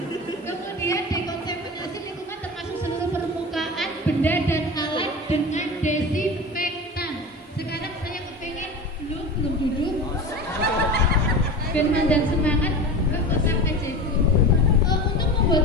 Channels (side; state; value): both; normal; correlation 0.30